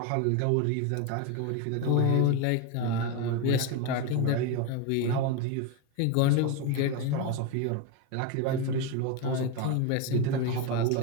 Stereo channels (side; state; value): both; different; correlation 0.03